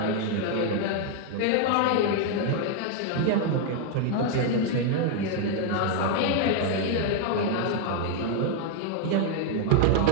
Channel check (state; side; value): different; both; correlation 0.00